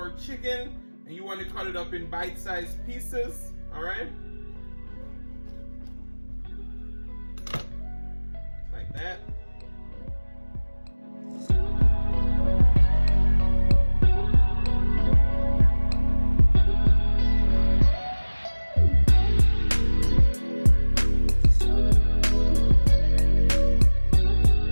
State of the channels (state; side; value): inverted; both; correlation -1.00